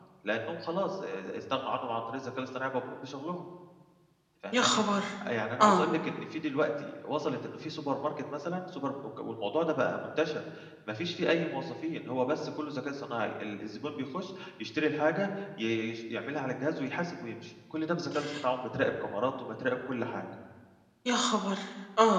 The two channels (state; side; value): identical; both; correlation 1.00